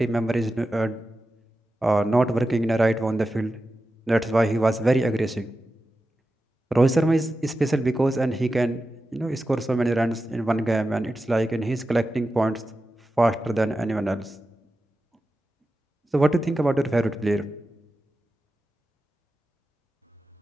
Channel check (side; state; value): both; normal; correlation 0.92